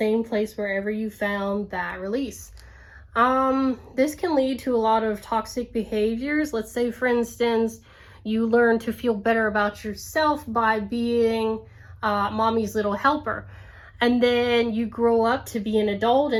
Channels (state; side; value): identical; both; correlation 1.00